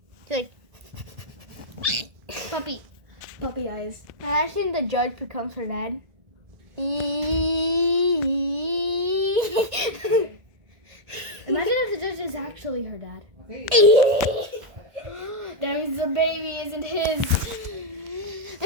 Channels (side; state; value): left; late; 1.7 ms